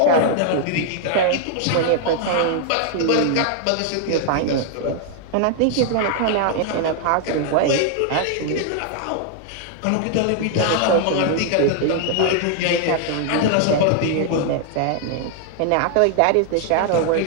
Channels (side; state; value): both; different; correlation 0.00